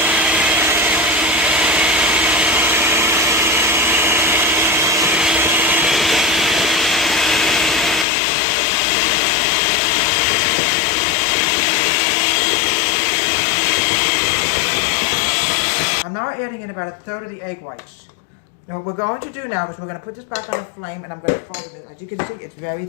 I'm now adding in about 1/3 of the egg whites. Now what we're going to do now is we're going to put this back on the flame, and I'm going to fold it. As you can see, it's very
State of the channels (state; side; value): drops out; right; at 8.1 s